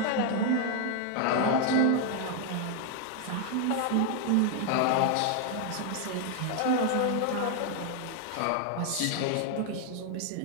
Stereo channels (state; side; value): different; both; correlation 0.00